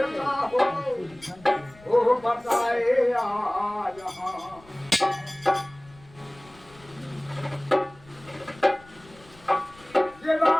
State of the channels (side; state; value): left; noise; rumble, 25 dB below the sound